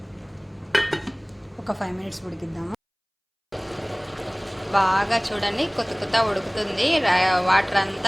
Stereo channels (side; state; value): both; identical; correlation 1.00